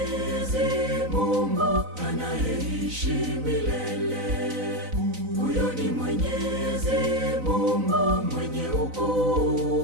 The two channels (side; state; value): left; late; 4.0 ms